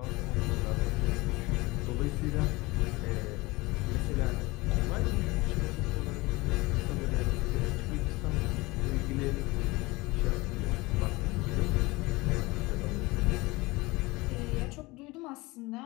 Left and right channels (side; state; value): right; quieter; 22.4 dB